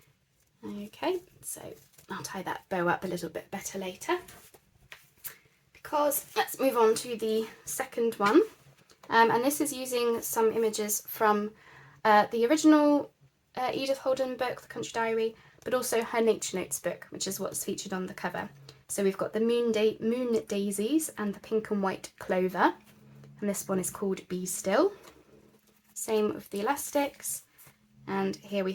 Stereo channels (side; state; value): both; identical; correlation 1.00